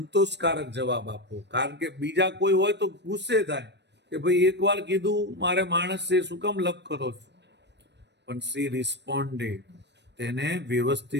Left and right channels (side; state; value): left; late; 0.50 ms